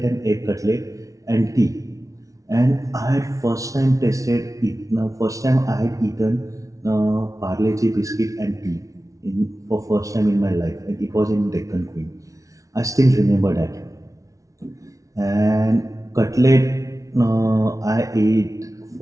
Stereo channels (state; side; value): late; left; 0.16 ms